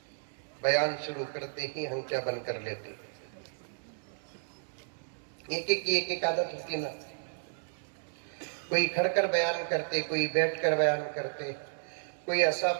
بیان شروع کرتے ہی ہنچا بند کر لیتے. ایک عادت ہوتی نا. کوئی کھڑ کر بیان کرتے، کوئی بیٹھ کر بیان کرتے، کوئی عصا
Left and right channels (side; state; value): left; silent; digital silence